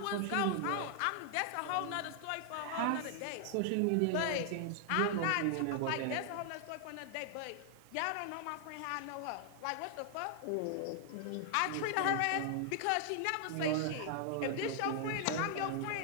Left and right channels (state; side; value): different; both; correlation -0.01